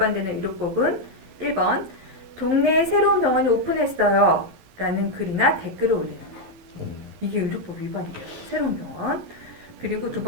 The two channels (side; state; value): left; late; 11 ms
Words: 의료법은 1번 동네에 새로운 병원이 오픈했어요 라는 글이나 댓글을 올리는 거예요. 이게 의료법 위반이에요. 새로운 병원. 그리고 두